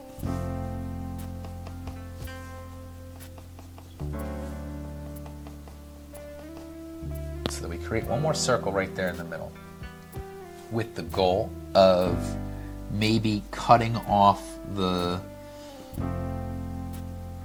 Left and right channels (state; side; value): identical; both; correlation 1.00